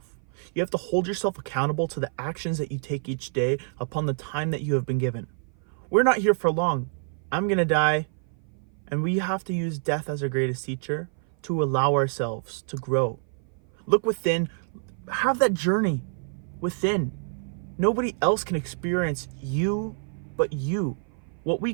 You have to hold yourself accountable to the actions that you take each day upon the time that you have been given. We're not here for long. I'm going to die, and we have to use death as our greatest teacher to allow ourselves to grow. Look within, have that journey within. Nobody else can experience you but you. What we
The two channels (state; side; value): silent; left; 56 dB below the other